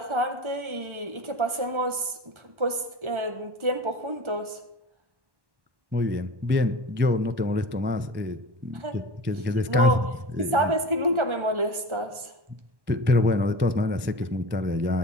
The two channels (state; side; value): late; left; 1.3 ms